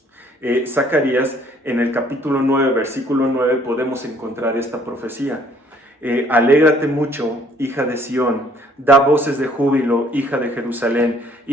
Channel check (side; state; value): both; normal; correlation 0.61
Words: Zacarías, en el capítulo 9, versículo 9, podemos encontrar esta profecía. Alégrate mucho, hija de Sión, da voces de júbilo, hija de Jerusalén,